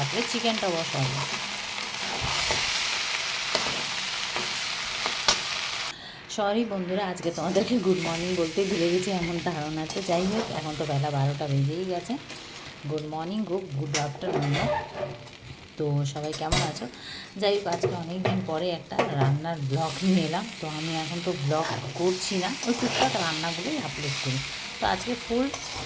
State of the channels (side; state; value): both; identical; correlation 1.00